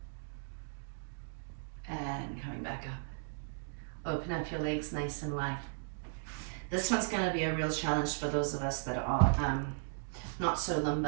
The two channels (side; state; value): left; silent; digital silence